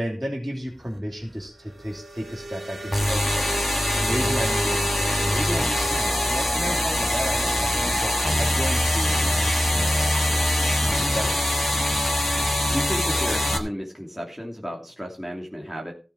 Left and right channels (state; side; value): normal; both; correlation 0.94